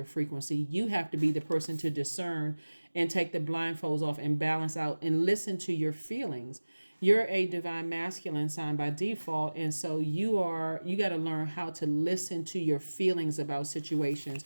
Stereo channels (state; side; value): inverted; both; correlation -1.00